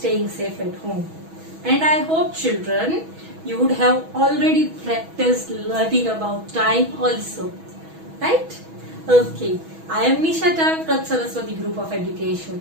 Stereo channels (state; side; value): late; left; 6.2 ms